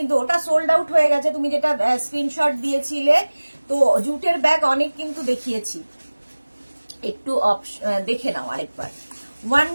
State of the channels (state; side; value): inverted; both; correlation -1.00